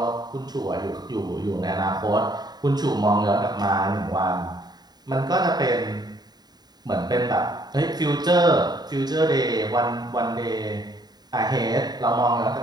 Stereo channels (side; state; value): left; late; 0.20 ms